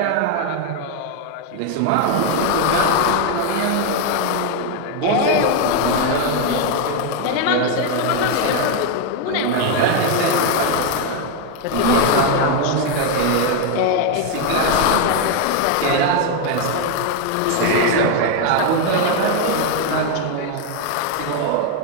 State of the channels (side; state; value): both; different; correlation 0.01